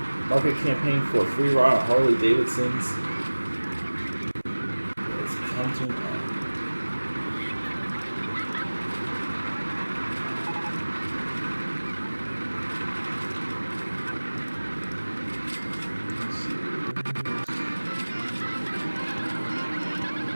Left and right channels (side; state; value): both; inverted; correlation -1.00